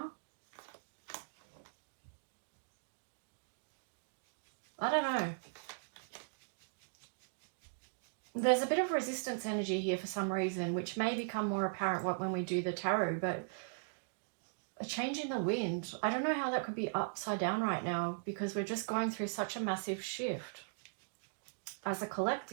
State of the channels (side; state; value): left; silent; digital silence